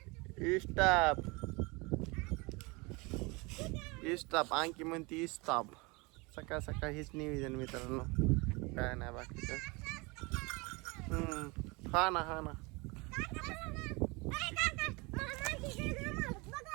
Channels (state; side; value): quieter; left; 26.6 dB